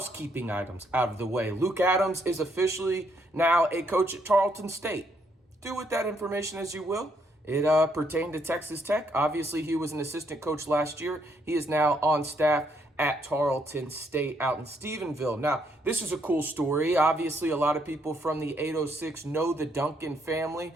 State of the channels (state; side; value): normal; both; correlation 0.72